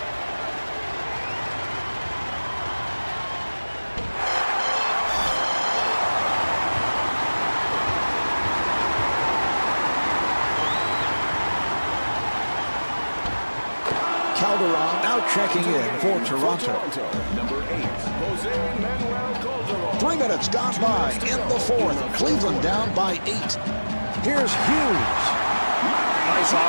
Calderon now checking in for Toronto. Number 8, Jose Manuel Calderon. 3 minutes gone by in the fourth. Cleveland down by 8. Here's Hughes. Nice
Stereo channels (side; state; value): both; inverted; correlation -1.00